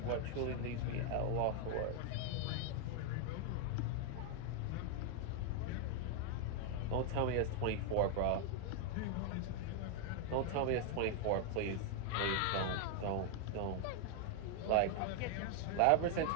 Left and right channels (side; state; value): both; different; correlation 0.00